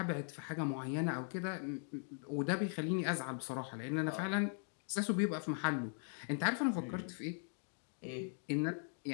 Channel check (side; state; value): right; silent; 51 dB below the other